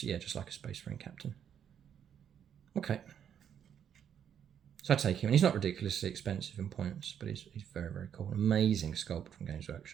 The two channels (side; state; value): left; quieter; 8.8 dB